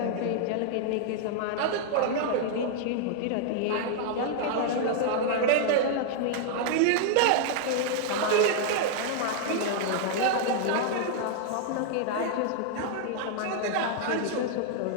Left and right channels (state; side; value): different; both; correlation 0.00